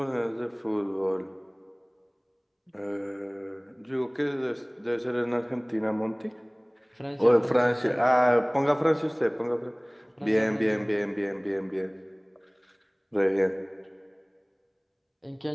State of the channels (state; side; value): identical; both; correlation 1.00